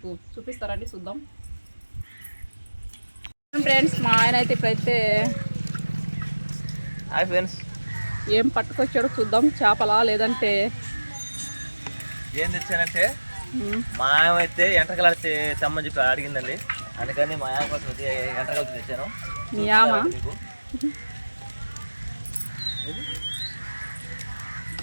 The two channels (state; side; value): inverted; both; correlation -1.00